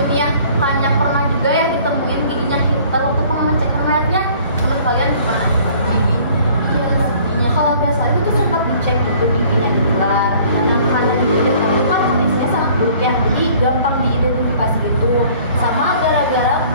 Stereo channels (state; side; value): inverted; both; correlation -0.54